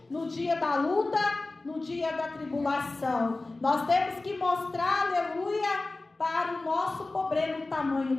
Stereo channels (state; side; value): quieter; right; 3.2 dB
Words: no dia da luta, no dia da tribulação. Nós temos que mostrar, aleluia, para o nosso problema, o tamanho